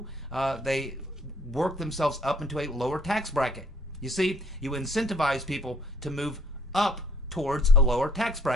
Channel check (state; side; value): normal; both; correlation 0.63